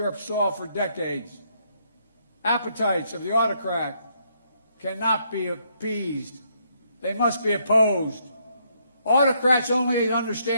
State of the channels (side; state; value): both; inverted; correlation -0.73